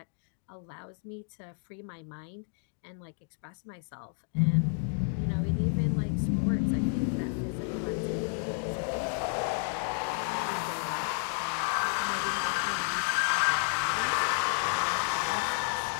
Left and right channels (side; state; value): right; silent; 57 dB below the other